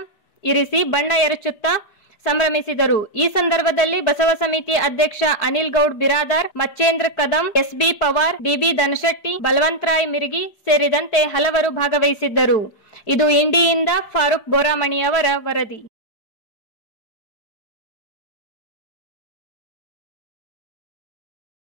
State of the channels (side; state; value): right; late; 4.9 ms